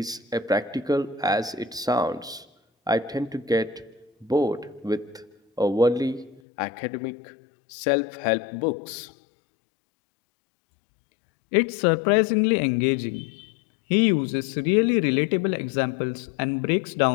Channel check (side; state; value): right; drops out; at 6.4 s